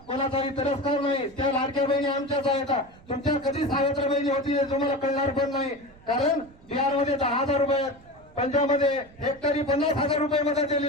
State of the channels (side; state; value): right; noise; rumble, 25 dB below the sound